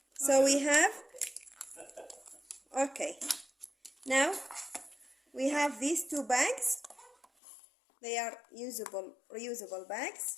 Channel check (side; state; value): right; drops out; at 7.2 s